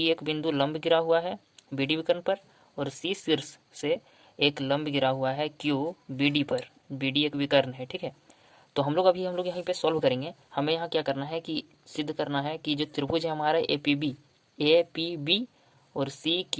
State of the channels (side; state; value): both; identical; correlation 1.00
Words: एक बिंदु लंब गिरा हुआ है BD विकर्ण पर, और C शीर्ष से एक लंब गिरा हुआ है Q BD पर। BD एक विकर्ण है, ठीक है। तो हम लोग यहाँ पे सॉल्व करेंगे। हमें यहाँ क्या करना है कि सिद्ध करना है कि जो त्रिभुज है हमारा APB और